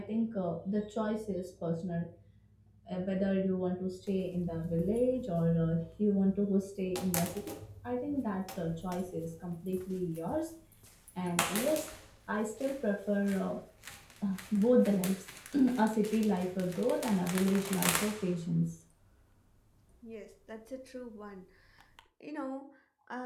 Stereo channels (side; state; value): both; identical; correlation 1.00